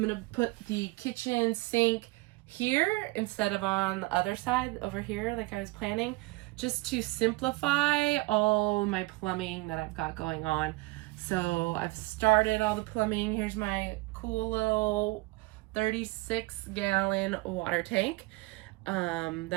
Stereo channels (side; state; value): left; quieter; 22.6 dB